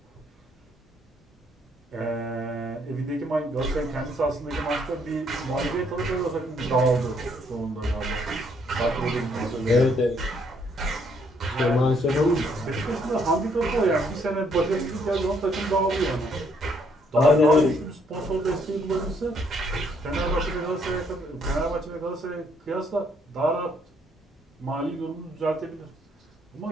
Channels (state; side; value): normal; both; correlation 0.69